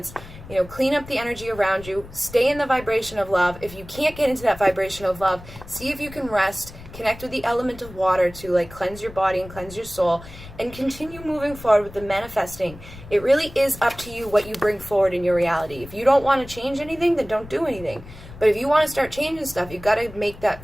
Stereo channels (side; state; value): left; noise; rumble, 17 dB below the sound